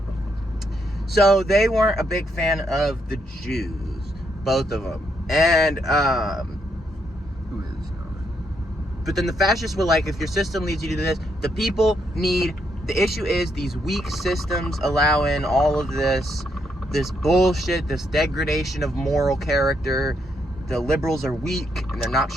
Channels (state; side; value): normal; both; correlation 0.76